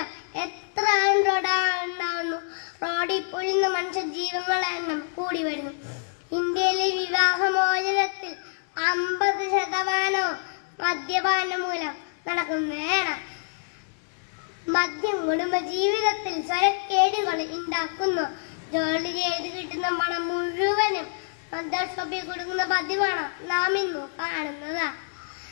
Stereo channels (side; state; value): right; silent; digital silence